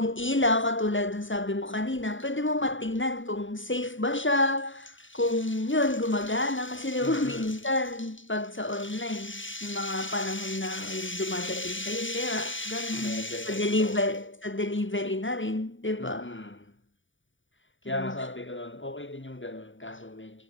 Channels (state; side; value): late; right; 0.56 ms